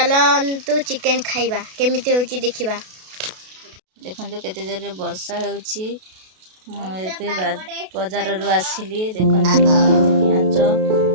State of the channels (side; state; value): left; late; 32 ms